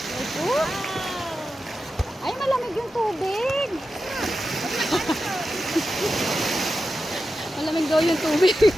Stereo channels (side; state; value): both; normal; correlation 0.91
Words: Ito. Ay, malamig yung tubig. Malamig daw yung tubig.